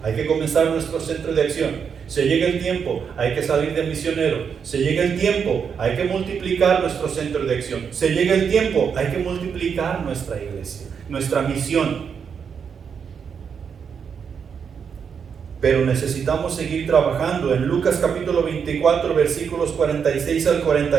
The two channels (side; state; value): left; quieter; 6.8 dB